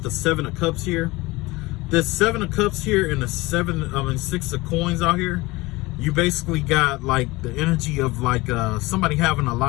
the Seven of Cups here. This Seven of Cups here and the Six of Coins out here. You basically got like the energy of like somebody having a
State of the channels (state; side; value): quieter; right; 21.6 dB